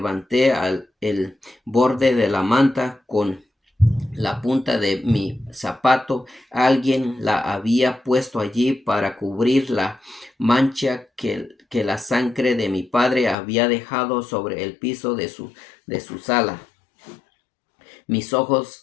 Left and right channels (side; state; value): right; drops out; at 13.4 s